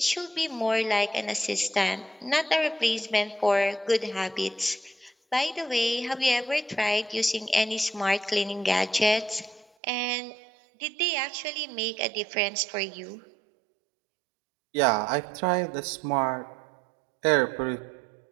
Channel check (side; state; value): left; drops out; at 9.7 s